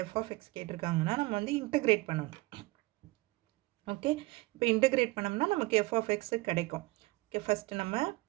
f of x கேட்டிருக்காங்கன்னா நம்ம வந்து integrate பண்ணணும். Okay, இப்போ integrate பண்ணோம்னா நமக்கு f of x கிடைக்கும். ஓகே, ஃபர்ஸ்ட் நம்ம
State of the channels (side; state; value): left; quieter; 21.9 dB